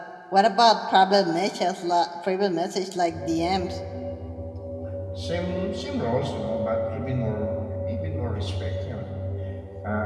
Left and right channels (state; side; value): identical; both; correlation 1.00